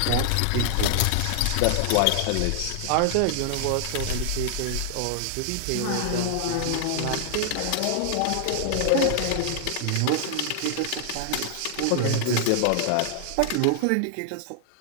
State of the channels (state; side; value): different; both; correlation 0.00